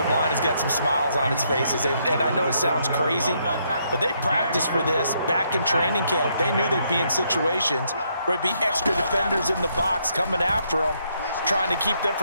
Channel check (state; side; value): inverted; both; correlation -0.74